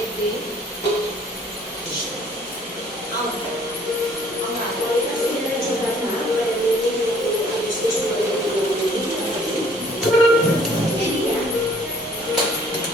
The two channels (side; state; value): both; normal; correlation 0.58